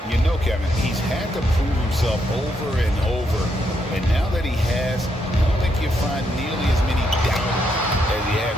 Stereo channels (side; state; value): both; normal; correlation 0.78